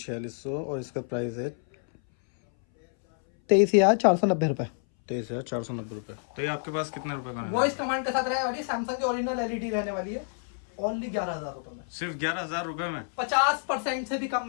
और इसका प्राइस है 23,490 रुपए। 23,490 रुपए। तो ये आपके पास कितने रुपए का रहने वॉइस वाला है? कमांड के साथ रहने वाली सैमसंग की ओरिजिनल एलईडी रहने वाली है, ओनली 11,000 रुपए में। सिर्फ 11,000 रुपए में? 50% से भी कम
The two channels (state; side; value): silent; right; 59 dB below the other